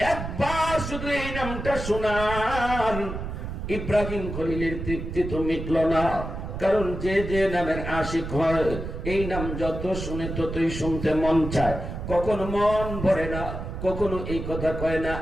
একবার শুধু এই নামটা শোনান, ইব্রাহিম খলিলের তৃপ্তি তো মিটল না। কারণ যে যে নামের আশিক হয়, এই নাম যত শুনে ততই শুনতে মন চায়। কখনো মন ভরে না, কখনো এই কথা কয় না,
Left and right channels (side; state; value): right; noise; rumble, 6 dB below the sound